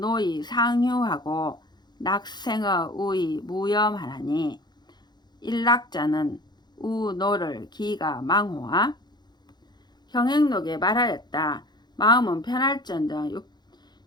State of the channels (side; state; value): right; late; 0.21 ms